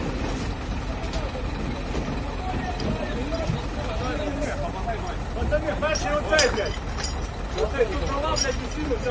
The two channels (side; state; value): both; identical; correlation 1.00